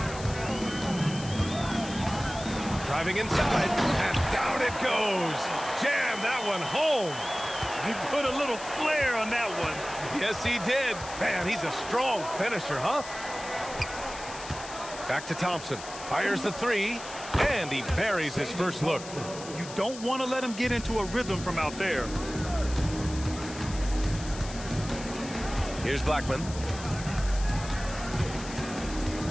Driving inside, and down it goes. Jam that one home. He put a little flair on that one. Yes, he did. Man, he's a strong finisher, huh? Back to Thompson. Fires the three, and he buries his first look. You don't want to let him get into a rhythm from out there. Here's Blackman.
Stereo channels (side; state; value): left; noise; hiss, 13 dB below the sound